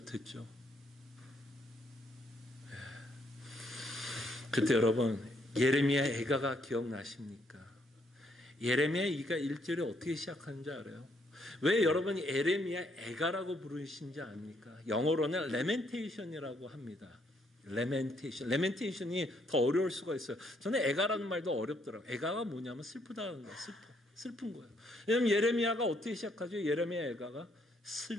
그때 여러분, 예레미야 애가가 기억나십니까? 예레미야 2가 1절이 어떻게 시작하는지 알아요? 왜 여러분이 예레미야 애가라고 부르신지 압니까? 영어로는 레멘테이션이라고 합니다. 레멘테이션이 더 어려울 수가 있어요. 저는 애가라는 말도 어렵더라고요. 애가가 뭐냐면 슬프다는 거예요. 슬픈 거예요. 왜냐하면 예레미야가 어떻게 시작하죠? 예레미야 애가가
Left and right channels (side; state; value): both; normal; correlation 0.71